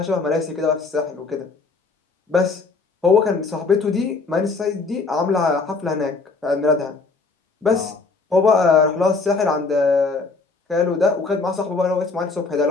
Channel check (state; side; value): quieter; right; 4.1 dB